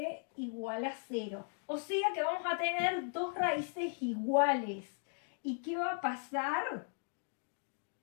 igual a 0. O sea que vamos a tener dos raíces iguales. ¿Y qué va a pasar?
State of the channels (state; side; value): silent; right; 53 dB below the other